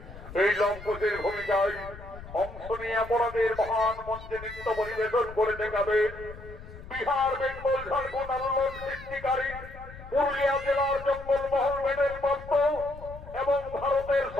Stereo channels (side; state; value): left; noise; rumble, 15 dB below the sound